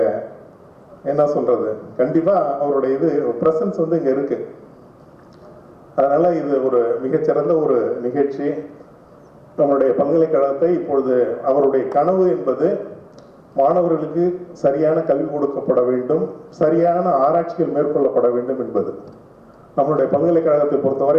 என்ன சொல்றது, கண்டிப்பா அவருடைய இது பிரசன்ஸ் வந்து இங்க இருக்கு. அதனால இது ஒரு மிகச்சிறந்த ஒரு நிகழ்ச்சி. நம்மளுடைய பல்கலைக்கழகத்தை இப்பொழுது அவருடைய கனவு என்பது மாணவர்களுக்கு சரியான கல்வி கொடுக்கப்பட வேண்டும், சரியான ஆராய்ச்சிகள் மேற்கொள்ளப்பட வேண்டும் என்பது. நம்மளுடைய பல்கலைக்கழகத்தை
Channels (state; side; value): identical; both; correlation 1.00